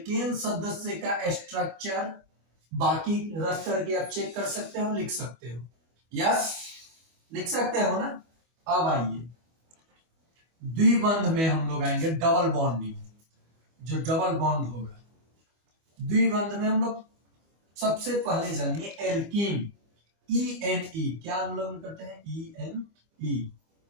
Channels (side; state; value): left; late; 25 ms